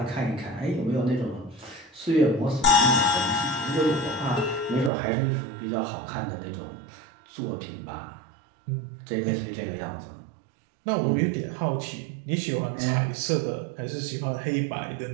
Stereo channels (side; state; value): left; drops out; at 4.9 s